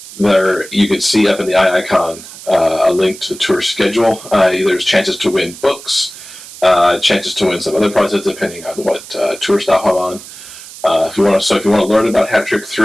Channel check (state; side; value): noise; right; hiss, 16 dB below the sound